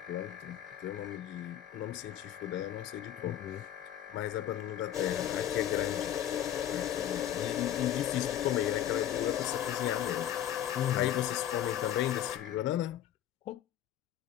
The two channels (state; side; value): quieter; right; 11.2 dB